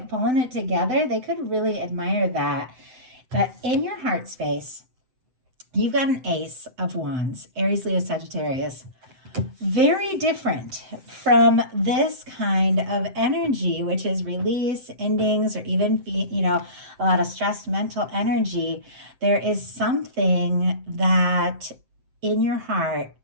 pulling it together. They could really admire that. But in your heart space, you've got an Ace of Wands, Aries, Leo, Sagittarius. Very different from this kind of energy, which is release, endings, or even, a lot of stressed mental energy. There is something that in your heart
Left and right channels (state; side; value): late; left; 7.8 ms